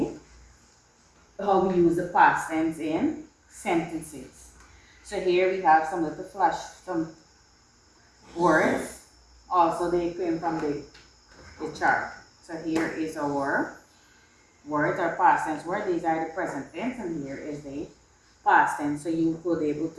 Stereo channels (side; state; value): both; identical; correlation 1.00